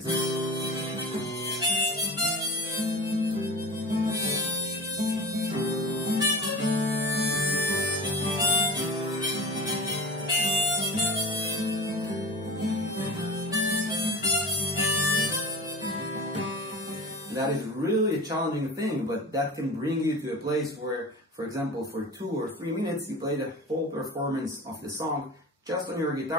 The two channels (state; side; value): normal; both; correlation 0.32